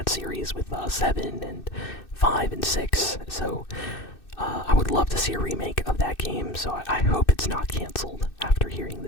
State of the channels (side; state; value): right; late; 2.6 ms